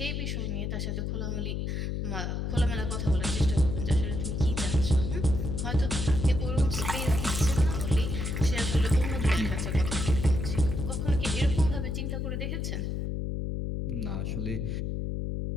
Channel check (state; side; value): noise; left; hum, 2 dB below the sound